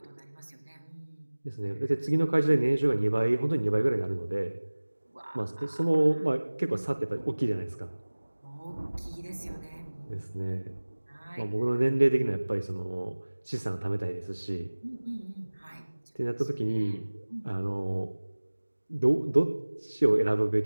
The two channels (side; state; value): both; inverted; correlation -1.00